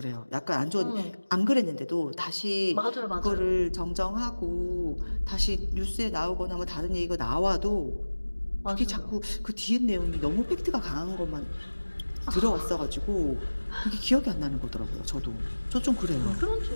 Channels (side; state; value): both; inverted; correlation -1.00